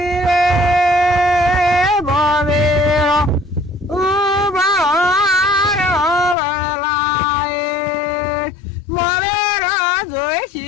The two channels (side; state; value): right; drops out; at 6.4 s